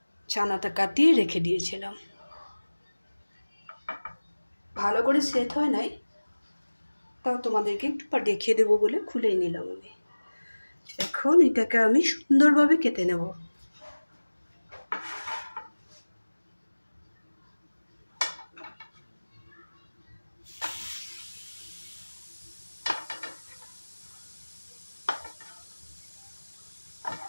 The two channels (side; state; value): both; inverted; correlation -1.00